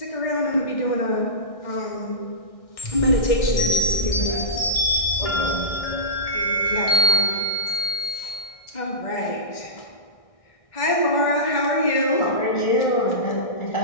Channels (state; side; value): late; right; 1.6 ms